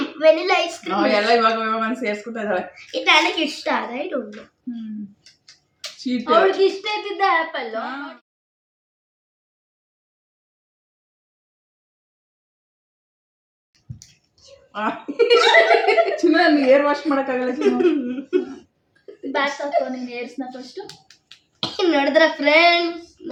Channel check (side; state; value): both; identical; correlation 1.00